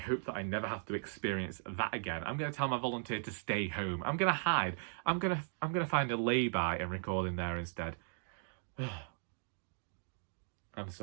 that I never have to experience that again. I'm going to tell my volunteer to stay home. I'm going to hide. I'm going to find a lay-by and record in there instead. I'm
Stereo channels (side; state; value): left; silent; digital silence